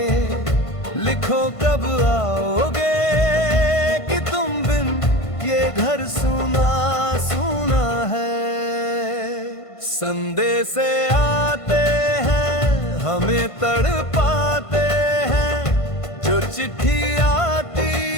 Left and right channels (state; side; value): late; right; 1.5 ms